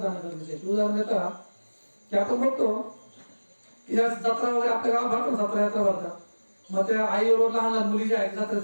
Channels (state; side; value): inverted; both; correlation -1.00